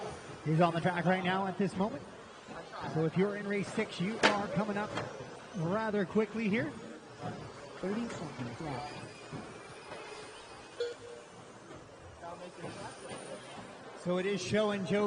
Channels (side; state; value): both; identical; correlation 1.00